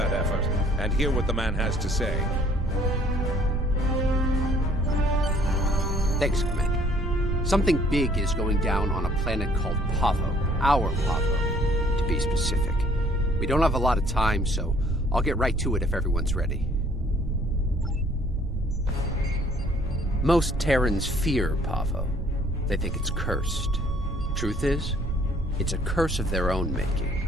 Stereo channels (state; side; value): normal; both; correlation 0.59